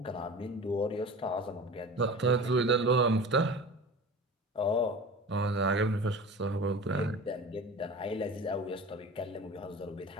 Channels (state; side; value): normal; both; correlation 0.36